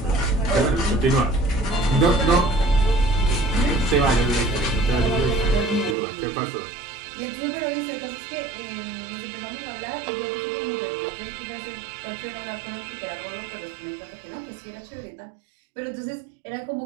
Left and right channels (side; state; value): left; drops out; at 6.0 s